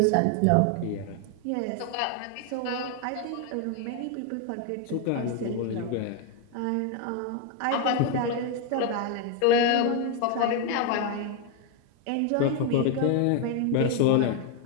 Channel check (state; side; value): different; both; correlation 0.01